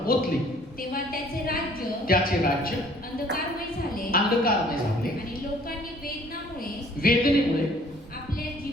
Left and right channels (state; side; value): normal; both; correlation 0.56